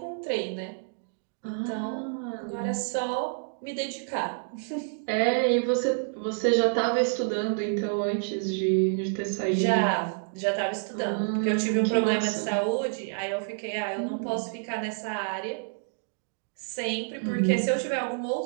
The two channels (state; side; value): silent; left; digital silence